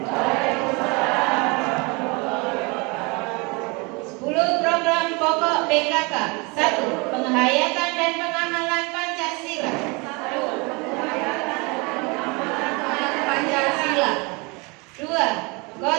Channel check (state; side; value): quieter; left; 28.3 dB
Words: 10 program pokok PKK. 1. Penghayatan dan pengamalan Pancasila. 2.